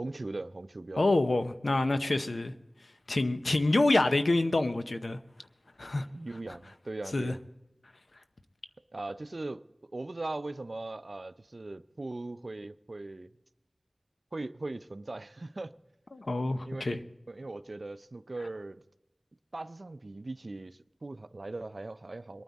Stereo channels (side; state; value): both; normal; correlation 0.98